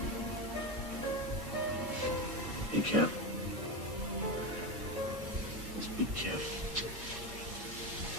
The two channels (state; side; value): normal; both; correlation 0.16